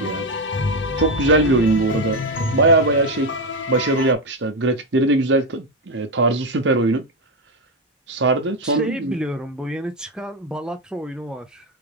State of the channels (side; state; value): both; normal; correlation 0.09